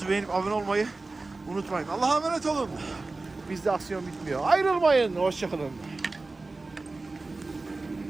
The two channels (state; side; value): quieter; left; 3.4 dB